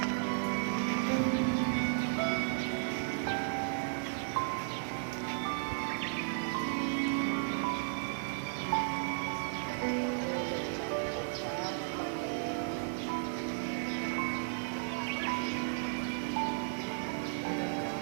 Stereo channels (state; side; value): silent; left; digital silence